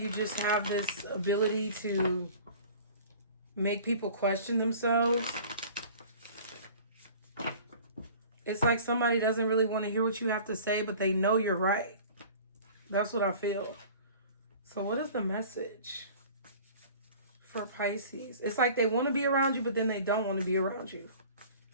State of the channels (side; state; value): both; inverted; correlation -0.45